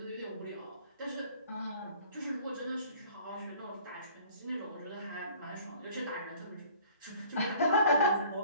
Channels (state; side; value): inverted; both; correlation -0.52